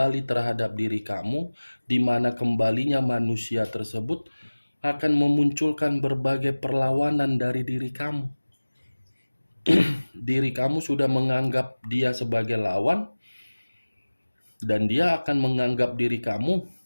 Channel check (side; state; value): both; inverted; correlation -1.00